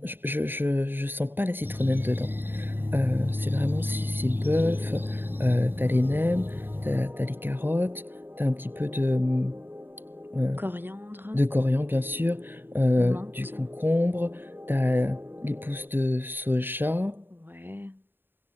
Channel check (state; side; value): late; left; 0.097 ms